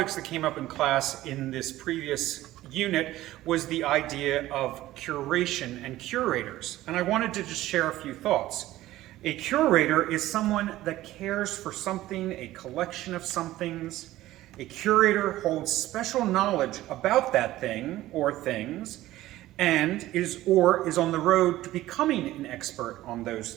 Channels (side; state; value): left; quieter; 15.6 dB